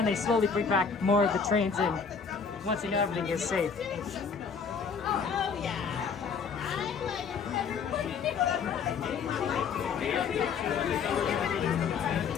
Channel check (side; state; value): right; quieter; 6.0 dB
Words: they slowly bring back more of the trains in once they know everything is safe.